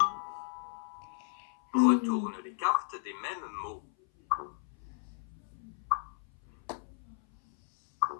Retourne les cartes des mêmes mots.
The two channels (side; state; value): right; silent; 55 dB below the other